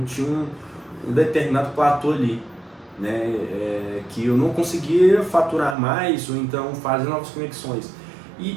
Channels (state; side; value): drops out; left; at 5.8 s